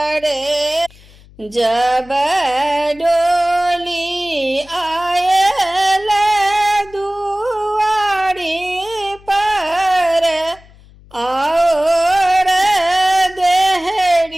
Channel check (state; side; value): noise; left; hum, 25 dB below the sound